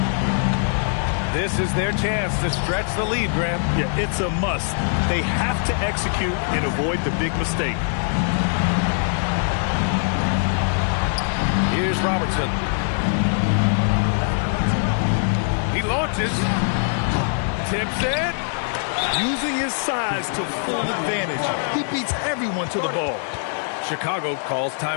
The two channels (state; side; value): silent; right; 64 dB below the other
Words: This is their chance to stretch the lead, Graham. Yeah, it's a must. They have to execute and avoid the big mistake. Here's Robertson. He launches. Tips it. Using his size to full advantage. He beats everyone to the ball. Chicago calls